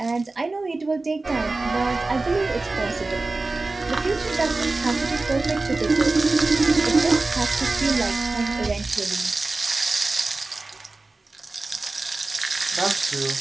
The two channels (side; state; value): left; quieter; 3.3 dB